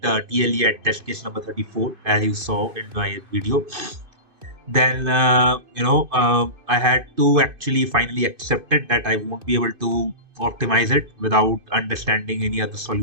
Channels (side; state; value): left; late; 2.5 ms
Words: at test case number 34, as you saw in my video. Then I had to actually finally accept it that I won't be able to optimize it without understanding any other